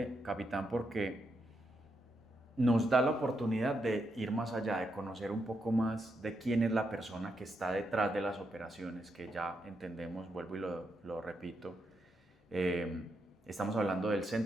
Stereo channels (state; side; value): normal; both; correlation 0.82